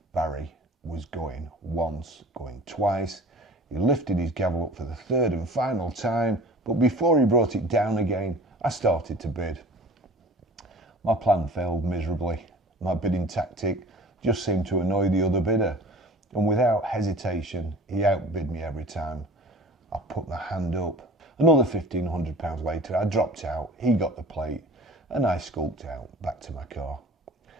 Barrie was going once, going twice. He lifted his gavel up for the 3rd and final time, but before he brought it down again, I started to bid. My plan failed miserably. My bidding tactic just seemed to annoy the other bidder, and without hesitation, he outbid me every time. I put my hand up. Another £1,500 later, I dropped out, he got the plate, and I skulked out back to my car.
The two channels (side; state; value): both; normal; correlation 0.43